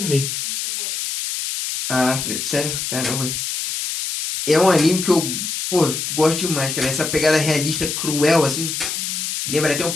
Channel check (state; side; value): noise; left; hiss, 3 dB below the sound